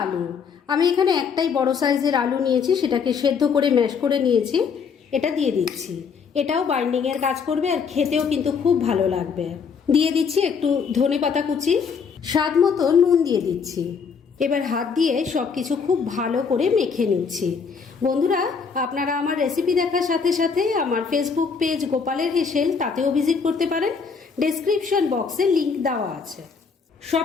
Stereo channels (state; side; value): quieter; right; 5.8 dB